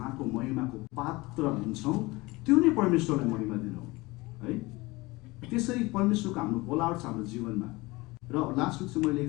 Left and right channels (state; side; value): quieter; right; 22.2 dB